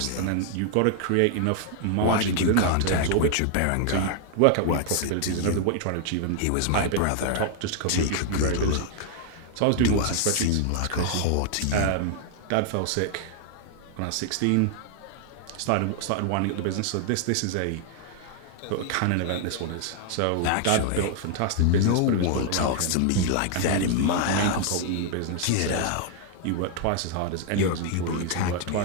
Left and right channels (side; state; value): both; different; correlation 0.00